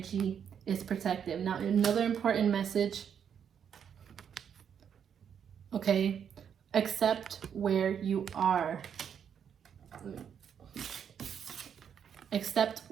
is protected. Now, another important message, okay, accept where you are. Accept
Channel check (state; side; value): quieter; left; 8.0 dB